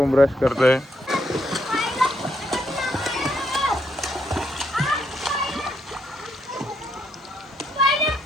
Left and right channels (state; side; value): normal; both; correlation 0.76